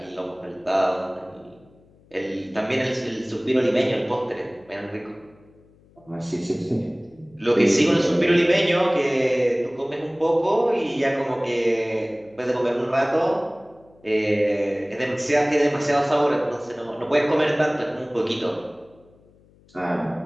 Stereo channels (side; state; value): left; noise; hum, 29 dB below the sound